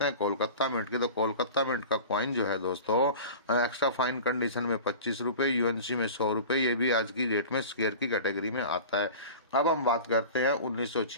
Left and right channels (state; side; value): inverted; both; correlation -0.36